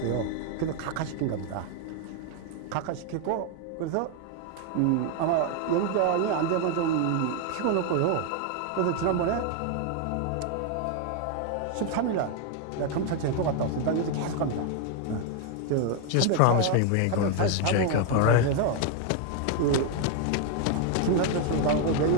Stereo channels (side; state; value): both; different; correlation 0.01